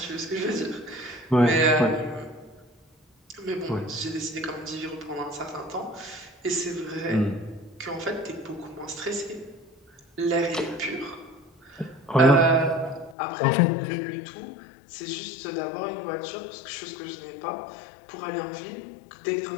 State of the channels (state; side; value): drops out; right; at 13.2 s